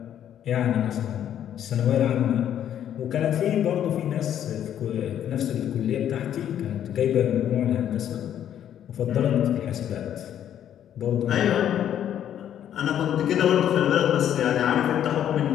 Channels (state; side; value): quieter; right; 10.3 dB